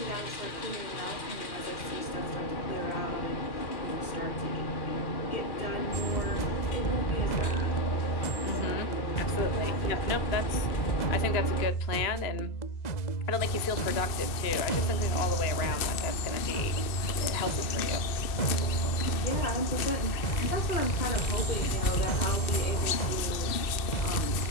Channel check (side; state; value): right; late; 2.6 ms